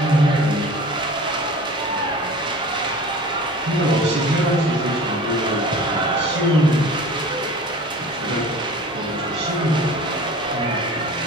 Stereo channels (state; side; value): normal; both; correlation 0.40